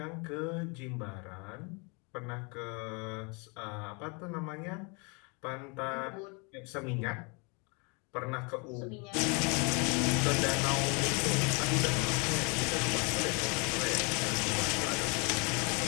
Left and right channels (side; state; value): right; quieter; 32.4 dB